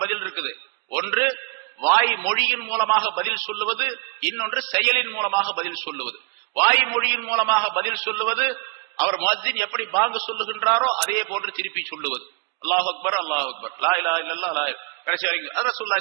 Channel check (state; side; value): quieter; left; 31.2 dB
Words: பதில் இருக்குது. ஒன்று வாய் மொழியின் மூலமாக பதில் சொல்லுவது, இன்னொன்று செயலின் மூலமாக பதில் சொல்லுவது. வாய் மொழியின் மூலமாக பதில் சொல்லுவது, அவர் முஅத்தின் எப்படி பாங்கு சொல்லுகின்றாரோ அதே போன்று திருப்பி சொல்லுவது. அல்லாஹ் அக்பர் அல்லாஹ் அக்பர் லா இலாஹா இல்லல்லாஹ் லா கடைசி வரைக்கும் அது